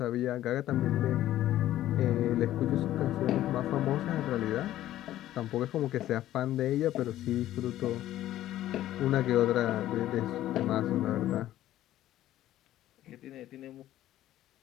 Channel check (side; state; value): right; quieter; 13.5 dB